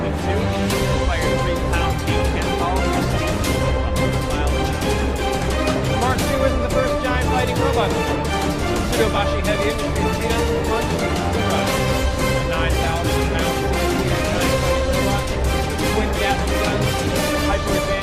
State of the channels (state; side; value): identical; both; correlation 1.00